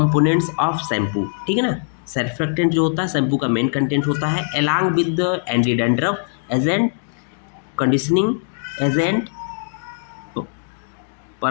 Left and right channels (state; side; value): silent; right; digital silence